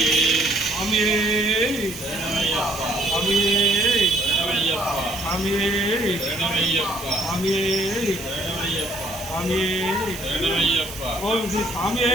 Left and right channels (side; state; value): right; noise; hiss, 13 dB below the sound